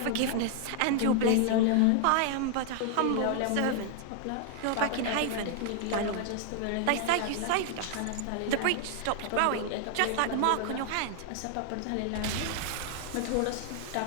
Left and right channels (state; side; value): different; both; correlation 0.00